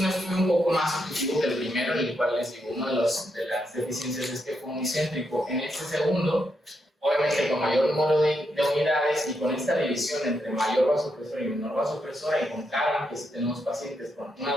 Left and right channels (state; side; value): normal; both; correlation 0.81